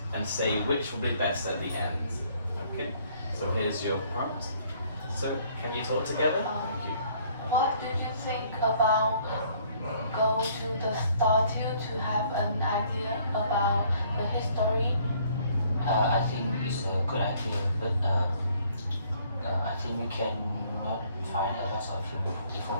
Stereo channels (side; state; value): both; inverted; correlation -0.61